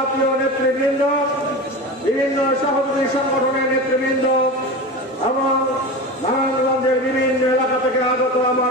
নেতৃবৃন্দ, বিভিন্ন সহযোগী সংগঠনের নেতৃবৃন্দ এবং নারায়ণগঞ্জের বিভিন্ন এলাকা থেকে আগত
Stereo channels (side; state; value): both; normal; correlation 0.27